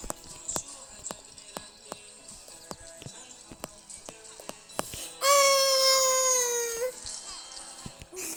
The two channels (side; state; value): both; identical; correlation 1.00